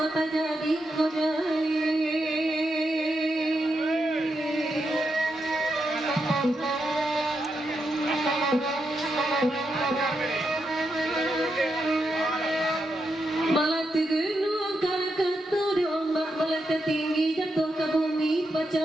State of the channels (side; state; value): both; normal; correlation 0.84